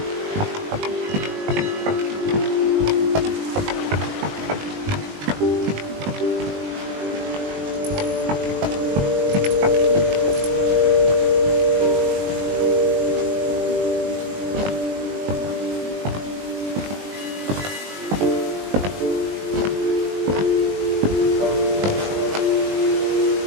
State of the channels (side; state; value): left; late; 20 ms